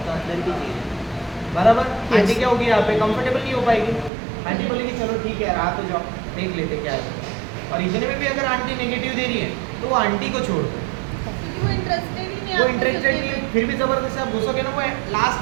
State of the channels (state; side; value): drops out; left; at 4.1 s